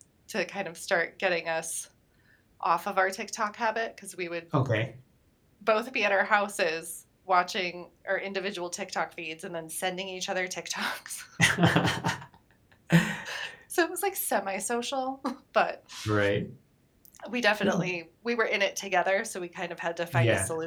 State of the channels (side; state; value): both; identical; correlation 1.00